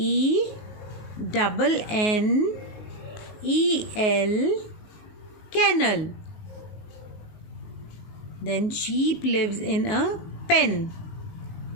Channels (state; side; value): late; right; 19 ms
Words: Kennel. Then sheep lives in a pen.